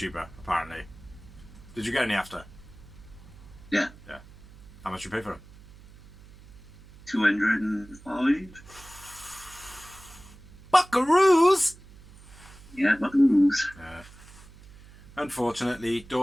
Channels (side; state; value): right; noise; hum, 21 dB below the sound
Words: apparently. Did you get any after? Yeah. Yeah. How much you pay for them? 205. Buckaroos! Yeah, buckaroos. Unfortunately,